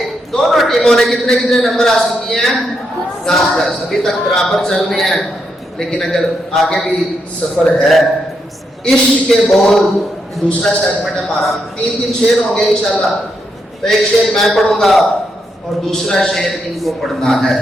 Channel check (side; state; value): both; normal; correlation 0.81